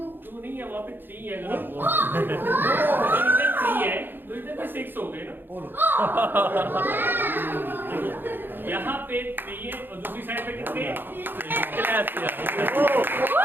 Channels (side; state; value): left; late; 0.097 ms